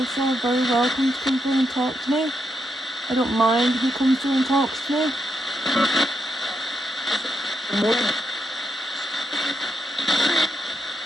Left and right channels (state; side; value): normal; both; correlation 0.82